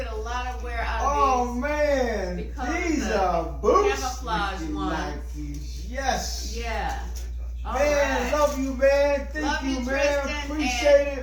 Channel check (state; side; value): identical; both; correlation 1.00